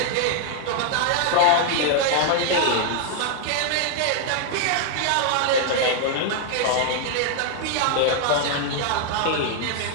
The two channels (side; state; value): both; different; correlation 0.00